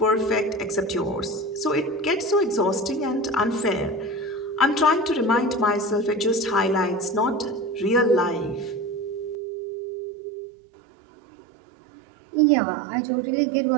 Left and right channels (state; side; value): drops out; left; at 9.3 s